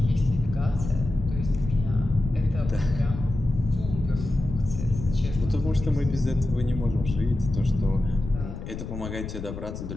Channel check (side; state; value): left; noise; rumble, 8 dB below the sound